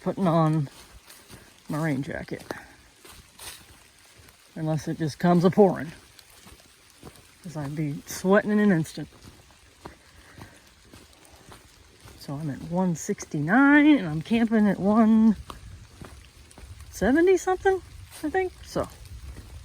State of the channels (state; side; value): identical; both; correlation 1.00